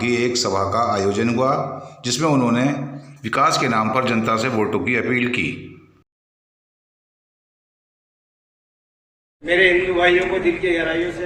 एक सभा का आयोजन हुआ, जिसमें उन्होंने विकास के नाम पर जनता से वोटों की अपील की। मेरे हिंदू भाइयों को दिल की गहराइयों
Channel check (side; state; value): both; identical; correlation 1.00